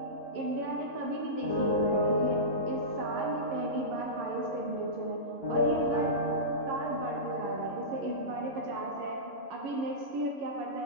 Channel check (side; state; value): left; late; 11 ms